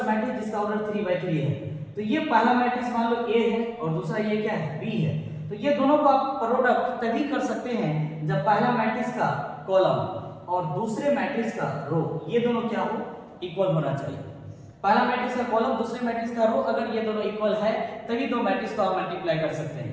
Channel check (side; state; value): both; identical; correlation 1.00